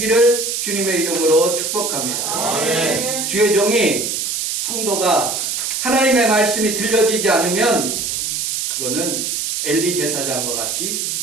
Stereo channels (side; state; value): right; noise; hiss, 1 dB below the sound